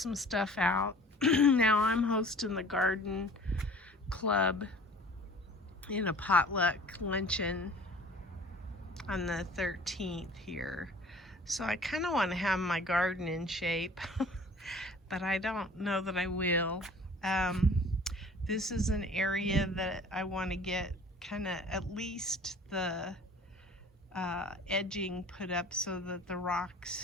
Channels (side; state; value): both; normal; correlation 0.47